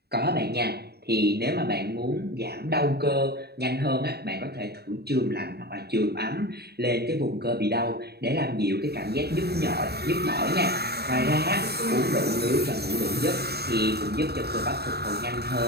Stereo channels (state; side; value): late; left; 0.47 ms